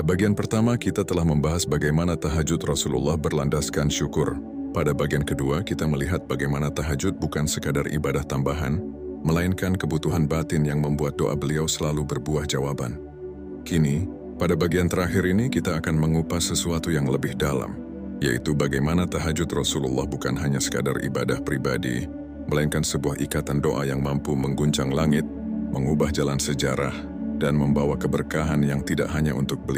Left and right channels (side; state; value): both; identical; correlation 1.00